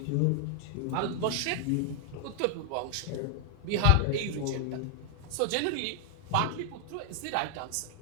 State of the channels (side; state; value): both; different; correlation 0.00